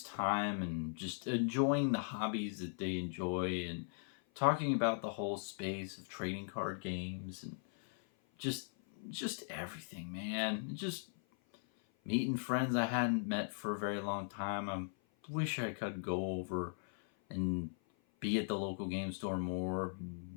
time and just enjoying the hobbies that they enjoy, and talking about the whole space of trading card games, and just everything, man. Just meeting friends I hadn't met for a very long time. I wish I could go over and be at the local game store more,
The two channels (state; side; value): silent; right; 52 dB below the other